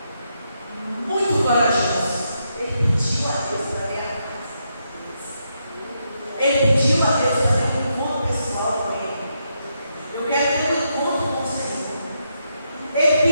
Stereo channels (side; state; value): both; inverted; correlation -0.81